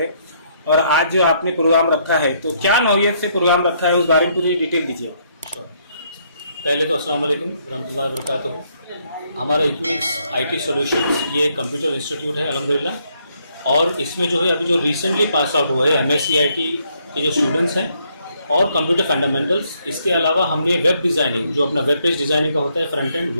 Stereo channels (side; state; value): both; inverted; correlation -0.71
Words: और आज जो आपने प्रोग्राम रखा है तो क्या नौयत से प्रोग्राम रखा है उस बारे में पूरी डिटेल दीजिए। पहले तो अस्सलाम वालेकुम रहमतुल्लाहि व बरकातहू। हमारा इक्विनिक्स आईटी सॉल्यूशंस ये कंप्यूटर इंस्टीट्यूट है अल्हम्दुलिल्लाह। और इसमें जो है अभी जो रिसेंटली पास आउट हुआ है एमएससीआईटी के जो स्टूडेंट्स हैं और कंप्यूटर फंडामेंटल्स, इसके अलावा हमने वेब डिज़ाइनिंग जो अपना वेब पेज डिज़ाइनिंग का होता है फ्रंट एंड